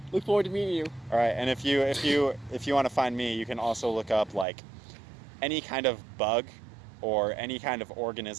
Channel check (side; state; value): left; drops out; at 4.5 s